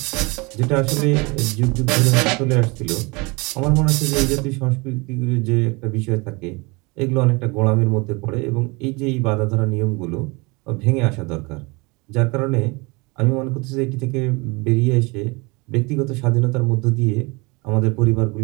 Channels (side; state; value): left; quieter; 26.9 dB